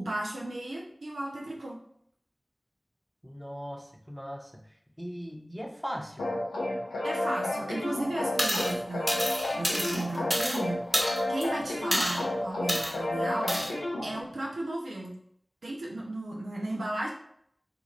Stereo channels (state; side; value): normal; both; correlation 0.96